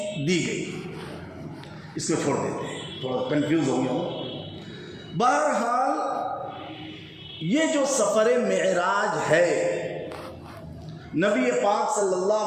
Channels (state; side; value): identical; both; correlation 1.00